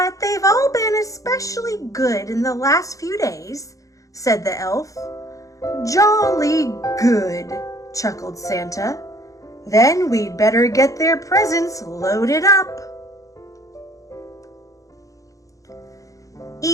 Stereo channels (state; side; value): late; right; 0.16 ms